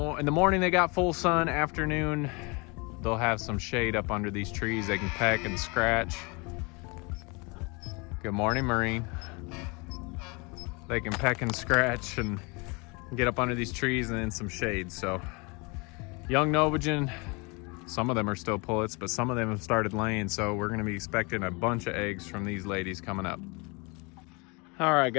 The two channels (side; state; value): right; quieter; 29.3 dB